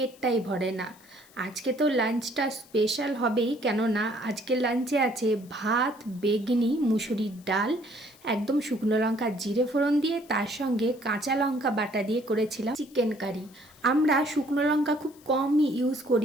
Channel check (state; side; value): noise; left; hiss, 26 dB below the sound